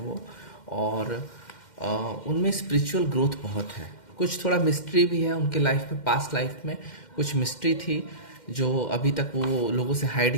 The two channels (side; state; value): right; late; 2.1 ms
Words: और उनमें स्पिरिचुअल ग्रोथ बहुत है। कुछ थोड़ा मिस्ट्री भी है उनके लाइफ में, पास्ट लाइफ में कुछ मिस्ट्री थी जो अभी तक वो लोगों से